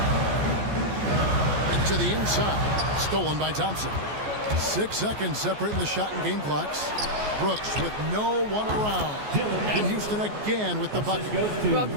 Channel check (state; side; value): late; left; 14 ms